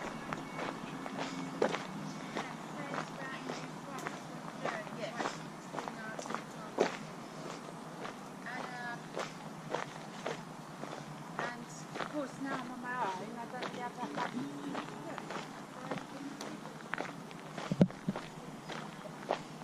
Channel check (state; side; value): identical; both; correlation 1.00